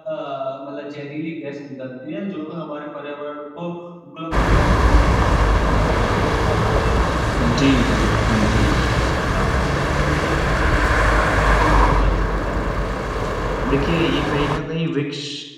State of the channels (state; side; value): identical; both; correlation 1.00